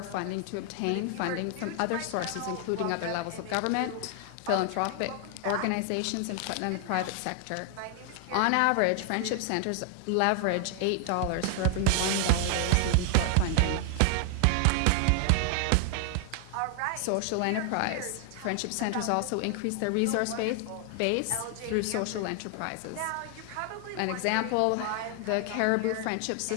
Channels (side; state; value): both; different; correlation 0.00